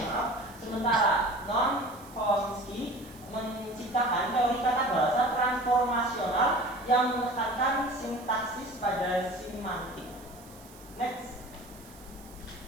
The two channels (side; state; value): right; noise; hiss, 22 dB below the sound